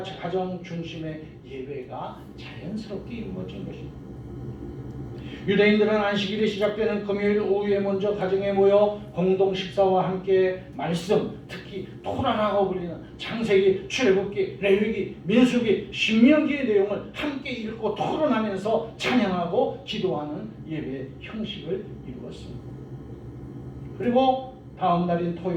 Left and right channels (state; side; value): identical; both; correlation 1.00